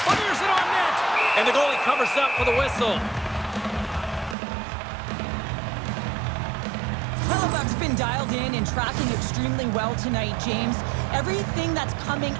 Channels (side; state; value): left; drops out; at 4.4 s